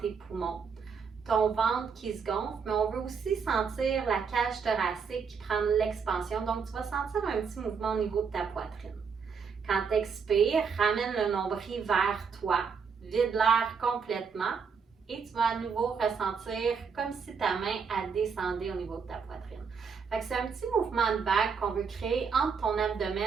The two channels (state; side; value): quieter; left; 5.9 dB